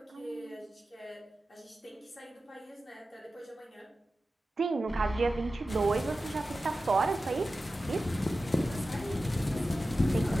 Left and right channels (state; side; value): normal; both; correlation 0.94